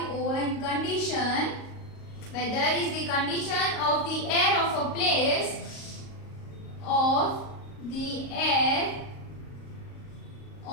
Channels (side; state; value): right; late; 38 ms